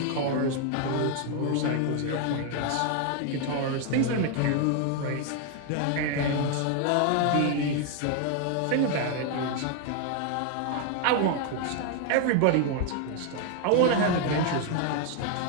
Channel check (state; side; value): different; both; correlation 0.00